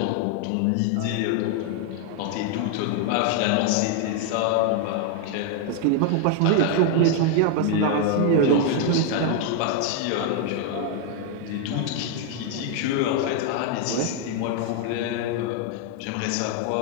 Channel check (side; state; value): both; different; correlation 0.00